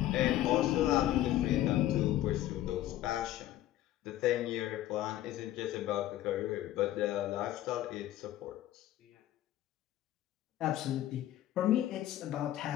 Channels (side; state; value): right; quieter; 13.6 dB